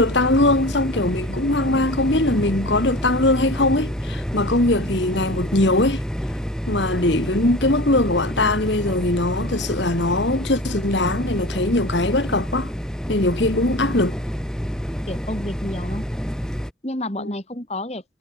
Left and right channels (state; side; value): normal; both; correlation 0.34